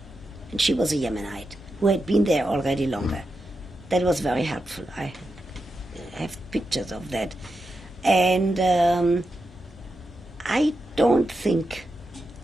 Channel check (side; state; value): both; normal; correlation 0.88